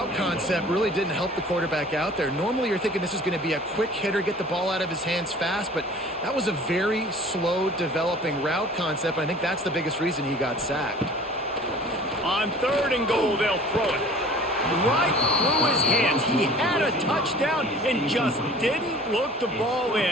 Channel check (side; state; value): both; normal; correlation 0.47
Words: concept really didn't help the quarterback out there. Normally you're thinking this is going to be a quick hitter, get the ball out of his hands fast, but that was a very slow developing route concept, and I think that's the biggest reason he got sacked. On 3rd and goal, they'll throw it right through his hands. He had a touchdown and just didn't look the ball